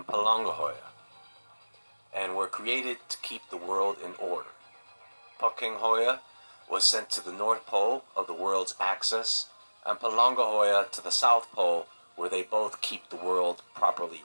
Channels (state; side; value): inverted; both; correlation -1.00